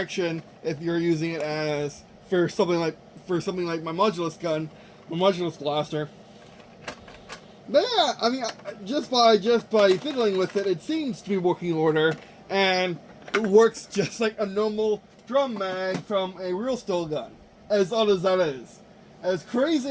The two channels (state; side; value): identical; both; correlation 1.00